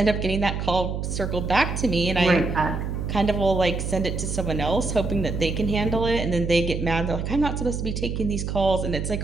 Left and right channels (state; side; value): noise; right; hum, 3 dB below the sound